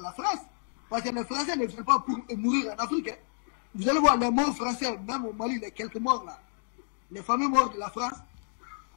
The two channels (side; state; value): right; silent; digital silence